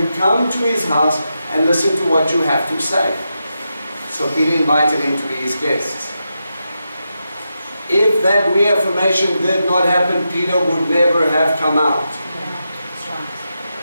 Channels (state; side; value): inverted; both; correlation -0.87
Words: come to his house and listen to what you have to say. So Peter invited him to be his guests. If that reaffirmation did not happen, Peter would never have come out.